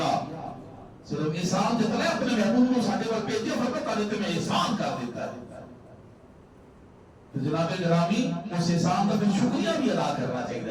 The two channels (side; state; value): both; identical; correlation 1.00